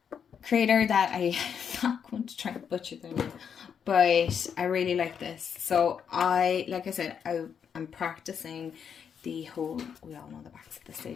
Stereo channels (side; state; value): right; quieter; 7.5 dB